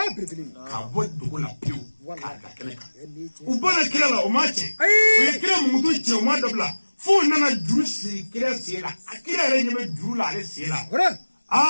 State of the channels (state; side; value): inverted; both; correlation -1.00